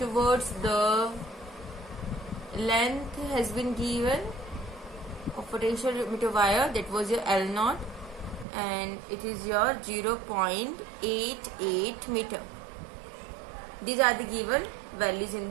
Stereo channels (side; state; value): left; drops out; at 8.5 s